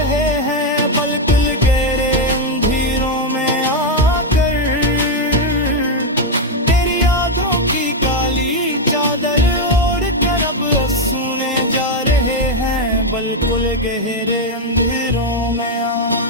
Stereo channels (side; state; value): both; normal; correlation 0.03